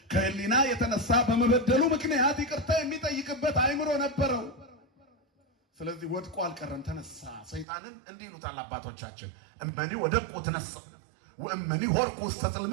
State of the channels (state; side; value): drops out; left; at 7.7 s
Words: ከህሊና የተነሳ በመበደሉ ምክንያት ይቅርታ የሚጠይቅበት አእምሮ ነበረው። ስለዚህ ወድቆ አልቀረም፣ ተነሳ። ሰይጣንን እንዲህ ይሉታል አባቶቻችን፣ እመኒ ወደቁ ተነሳ ወእመኒ ሆርቁ ውስተ